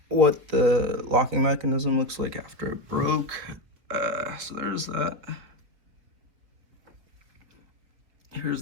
what the locking mechanism looks like after it broke. So there's that. Here's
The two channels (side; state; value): left; late; 4.2 ms